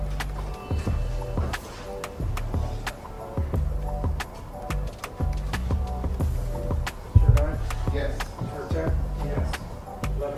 Juror 9? Yes. Juror 10? Yes. 11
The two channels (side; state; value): both; identical; correlation 1.00